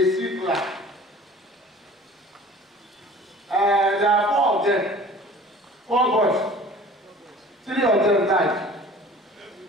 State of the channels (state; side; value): normal; both; correlation 0.45